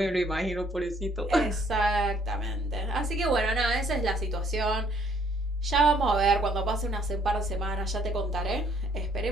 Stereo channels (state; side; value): normal; both; correlation 0.63